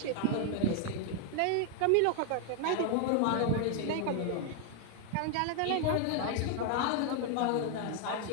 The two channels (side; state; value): both; different; correlation 0.00